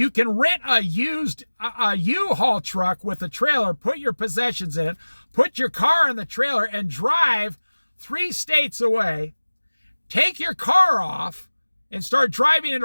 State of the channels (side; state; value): both; inverted; correlation -1.00